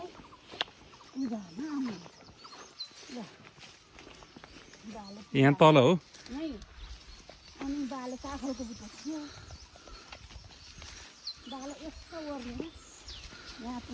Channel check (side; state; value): both; identical; correlation 1.00